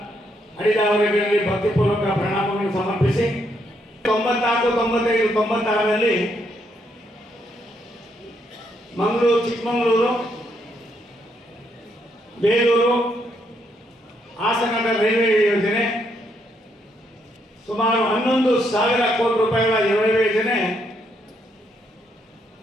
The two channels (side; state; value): both; normal; correlation 0.75